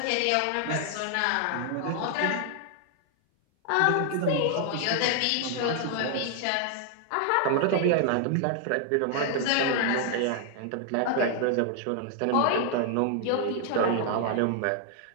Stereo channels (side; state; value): both; different; correlation 0.00